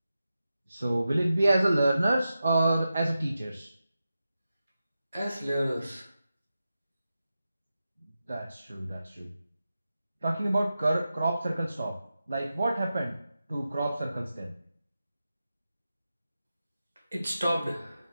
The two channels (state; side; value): inverted; both; correlation -0.91